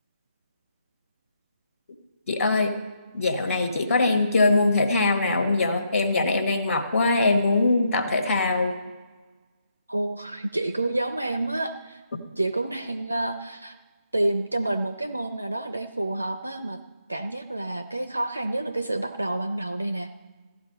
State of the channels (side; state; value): both; inverted; correlation -0.78